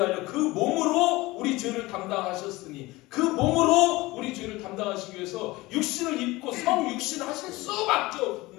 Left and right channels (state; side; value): quieter; right; 20.6 dB